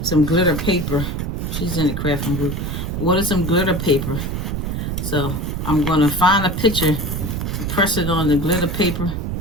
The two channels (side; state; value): right; noise; rumble, 3 dB below the sound